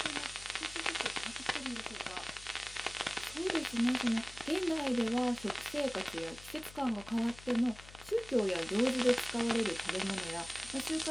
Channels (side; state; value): left; noise; hum, 18 dB below the sound